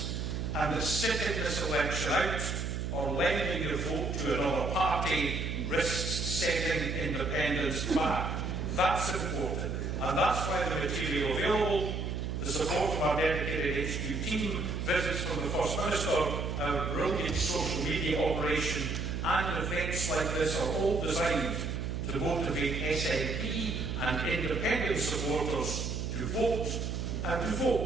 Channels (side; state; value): right; noise; hum, 3 dB below the sound